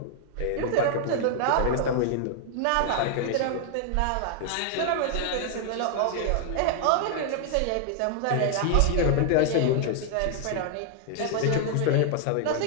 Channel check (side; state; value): both; different; correlation 0.00